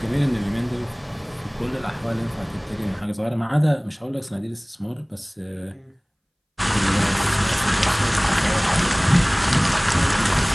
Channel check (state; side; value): identical; both; correlation 1.00